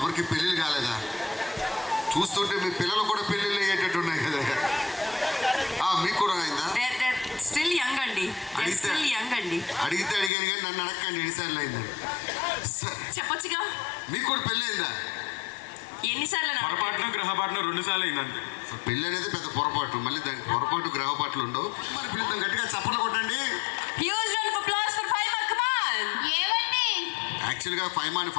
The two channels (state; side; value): drops out; right; at 10.3 s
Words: పెళ్ళిళ్ళు కాలేదా? చూస్తుంటే మీ పిల్లలు కూడా పెళ్ళిళ్ళు అయ్యేటట్టు ఉన్నాయి కదా. మీకు కూడా అయిందా? స్టిల్ యంగ్ అండి, స్టిల్ యంగ్ అండి. అడిగితే అడిగాను కానీ నన్ను అడగండి ఎన్నిసార్లు అయిందని. చెప్పొచ్చుగా. మీకు కూడా పెళ్ళి అయిందా? ఎన్నిసార్లు? పొరపాటున గ్రహపాటున 2 సార్లు అయిందంతే. పెళ్ళి అనేది పెద్ద పొరపాటు, మళ్ళీ దానికి పొరపాటు గ్రహపాట్లు ఉండవు. మరి పిల్లలు గట్టిగా చప్పట్లు కొట్టండి. Huge round of applause for Faima. Come on. ఏమండి? యాక్చువల్గా ఫైమాని